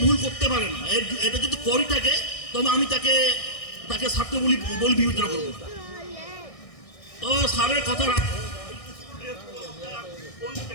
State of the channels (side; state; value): right; late; 1.6 ms